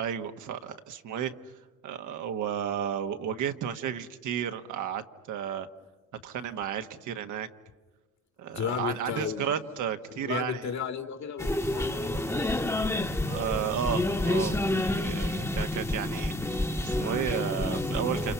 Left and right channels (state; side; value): normal; both; correlation 0.41